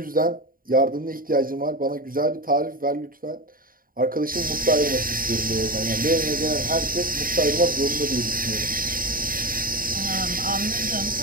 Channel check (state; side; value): late; left; 0.41 ms